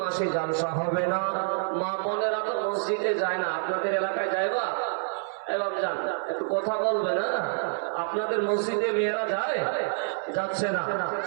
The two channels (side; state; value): left; silent; 58 dB below the other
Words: মাসে জালসা হবে না। মা বোনেরা তো মসজিদে যায় না, আপনাদের এলাকায় যাইবা? এবার যান, একটু কথা বলবে না? আপনাদের মসজিদে মেয়েরা যায়? যাচ্ছে না,